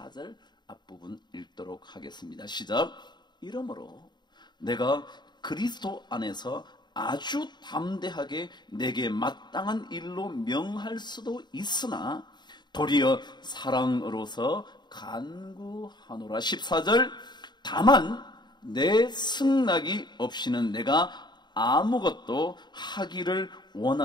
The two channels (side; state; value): right; late; 0.21 ms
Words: 앞부분 읽도록 하겠습니다. 시작. 이러므로 내가 그리스도 안에서 아주 담대하게 내게 마땅한 일로 명할 수도 있으나 도리어 사랑으로서 간구하노라. 14절. 다만 내 승낙이 없이는 내가 아무것도 하기를